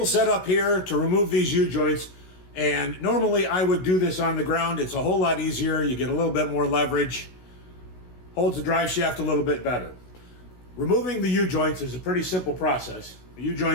set up here to remove these U-joints, and normally I would do this on the ground. It's a whole lot easier. You get a little bit more leverage, holds the drive shaft a little bit better. Removing the U-joints is a pretty simple process. The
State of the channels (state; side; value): late; right; 16 ms